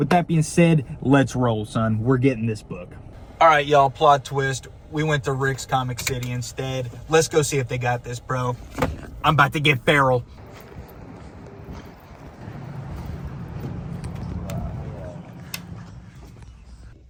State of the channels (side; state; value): both; identical; correlation 1.00